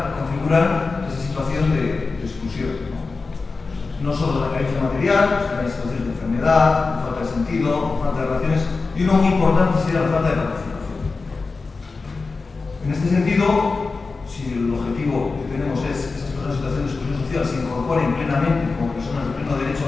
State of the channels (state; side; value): quieter; right; 4.1 dB